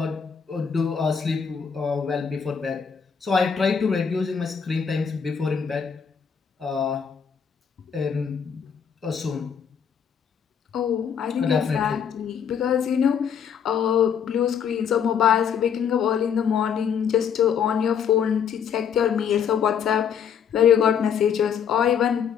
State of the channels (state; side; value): quieter; right; 7.4 dB